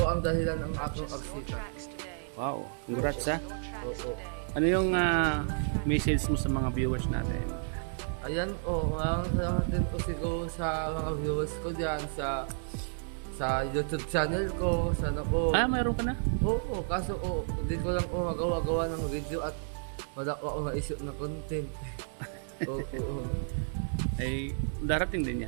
ang dahilan ng aking agsika. Wow, congrats ha. Oo. Ano yung message mo sa mga viewers natin? Ayan maraming salamat din po siguro sa mga viewers ko dyan sa YouTube channel ko. Sana po. Mayroon ka na? Oo, kaso hindi ko lang magawa ng video at wala ko ako maisip na content. Oo. Ay, darating din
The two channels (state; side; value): silent; left; digital silence